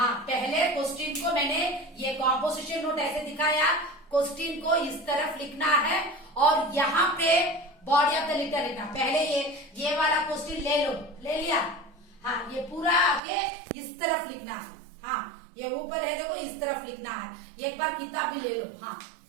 पहले क्वेश्चन को मैंने ये कॉम्पोजिशन नोट ऐसे दिखाया। क्वेश्चन को इस तरफ लिखना है और यहाँ पे बॉडी ऑफ द लेटर लिखना। पहले ये वाला क्वेश्चन ले लो, ले लिया, हाँ, ये पूरा आगे इस तरफ लिखना है। हाँ, ये ऊपर है देखो, इस तरफ लिखना है। एक बार किताब भी ले लो। हाँ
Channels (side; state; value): left; drops out; at 13.2 s